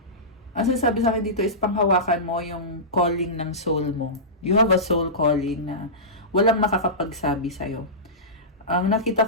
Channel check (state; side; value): normal; both; correlation -0.18